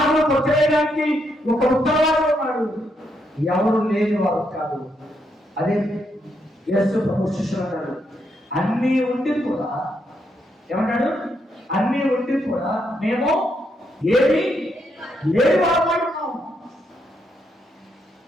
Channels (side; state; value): both; normal; correlation 0.78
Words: కొట్టేయడానికి ఒక ఉత్తరవాది ఉన్నాడు. ఎవరు లేని వారు కాదు. అదే యేసు ప్రభు శిష్యులు అన్నాడు, అన్నీ ఉండి కూడా ఏమన్నాడు? అన్నీ ఉండి కూడా మేము ఏమి లేని వారు ఉన్నాం.